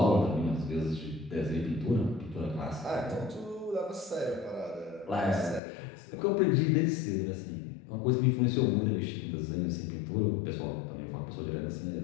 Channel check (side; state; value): right; drops out; at 5.6 s